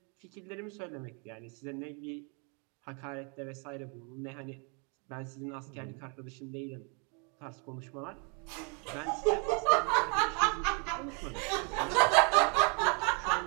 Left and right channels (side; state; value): left; quieter; 36.2 dB